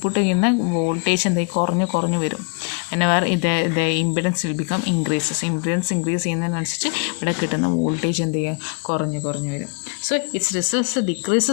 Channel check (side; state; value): right; quieter; 34.7 dB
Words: ചെയ്യുന്ന വോൾട്ടേജ് എന്തായി കുറഞ്ഞു വരും. whenever the impedance will become increases, impedance increase ചെയ്യുന്നതിനനുസരിച്ച് ഇവിടെ കിട്ടുന്ന വോൾട്ടേജ് എന്ത് ചെയ്യുക, കുറഞ്ഞു വരും. So it's results